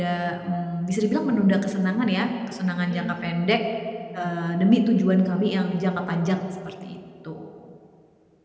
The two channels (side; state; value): both; identical; correlation 1.00